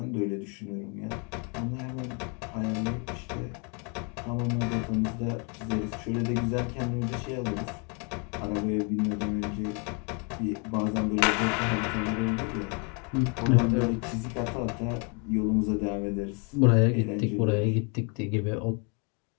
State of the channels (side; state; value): right; quieter; 35.4 dB